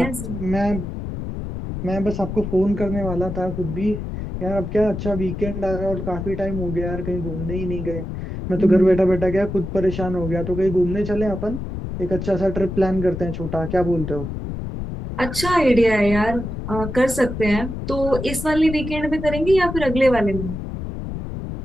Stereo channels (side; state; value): left; noise; rumble, 6 dB below the sound